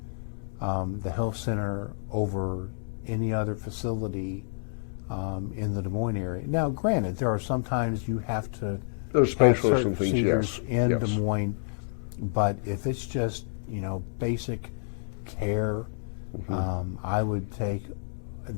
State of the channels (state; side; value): silent; right; 59 dB below the other